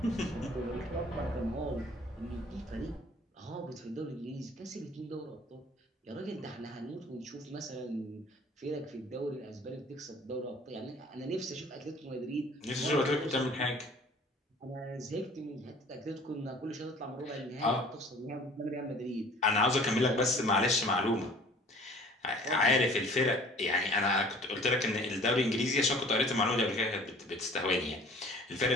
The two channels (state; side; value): normal; both; correlation 0.49